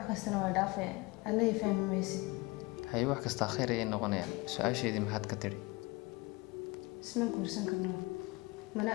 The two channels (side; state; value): right; quieter; 24.2 dB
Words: السنة ودافع الله يفهم ميسي هاي واحد كستاخير إيه نغنية سؤال شيء دي محد كتير اسمك ورسن كرنا ملا